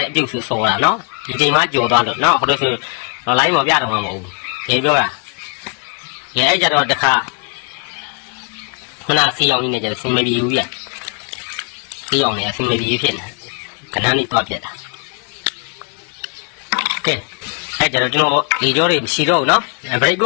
းအပြုတ်ဆူဆော်တာနော်ဒီချိန်မှကြော်သွားလို့နော်ဟိုလိုဆိုတော့ line ပေါ်ပြတော့မှာမဟုတ်ဘူးဒီပြောတာရဲအဲ့ကြတော့တခါခုနစီအောင်နေကြစင်မပြေဘူးပြစီအောင်နေစင်မပြေဖြစ်နေကဏ္ဍလေးတော့ပြတာကဲအဲ့ကြတော့ကျွန်တော်ဒီကြောတွေမရှိတော့ဘူးနော်ဘရိတ်က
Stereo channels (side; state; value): right; quieter; 36.7 dB